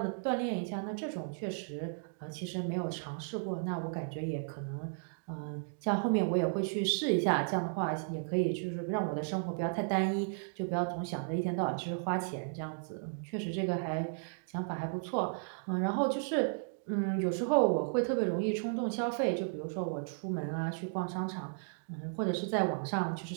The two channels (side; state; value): left; silent; digital silence